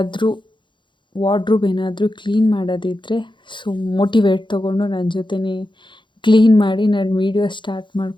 ವಾರ್ಡ್ರೋಬ್ ಏನಾದರೂ ಕ್ಲೀನ್ ಮಾಡೋದಿದ್ದರೆ ಸೊ ಮೋಟಿವೇಟ್ ತೊಗೊಂಡು ನನ್ನ ಜೊತೆನೇ ಕ್ಲೀನ್ ಮಾಡಿ ನಾನು ವೀಡಿಯೋ ಸ್ಟಾರ್ಟ್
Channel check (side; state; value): right; late; 0.23 ms